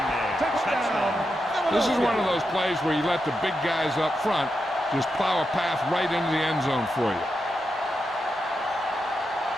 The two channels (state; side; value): normal; both; correlation 0.86